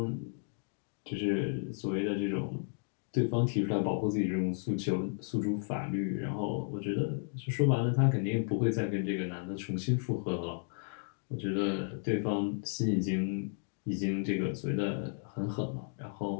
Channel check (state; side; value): silent; right; 55 dB below the other